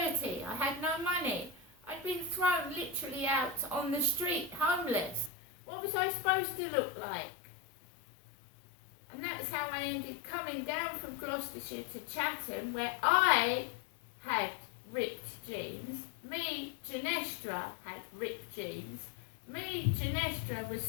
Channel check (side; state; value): right; drops out; at 5.3 s